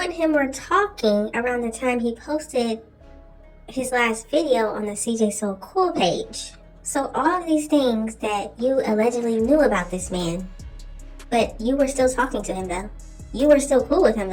him were talking around the time he posted his last video on the CJ So Cool page. So all of these things that you allegedly knew about this man, but you were still talking to him though. You were still cool with him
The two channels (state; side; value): identical; both; correlation 1.00